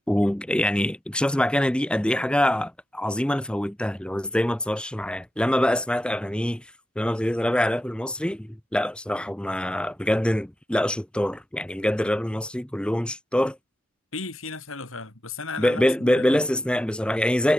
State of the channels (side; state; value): both; normal; correlation 0.90